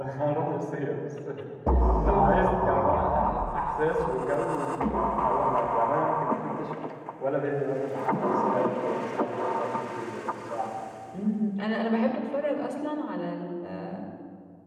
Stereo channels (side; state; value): both; identical; correlation 1.00